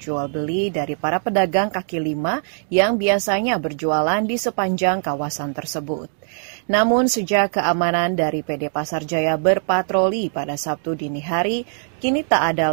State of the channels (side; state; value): left; silent; digital silence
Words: dari para pedagang kaki lima yang biasanya berjualan di sepanjang kawasan tersebut. Namun sejak keamanan dari PD Pasar Jaya berpatroli pada Sabtu dini hari, kini tak ada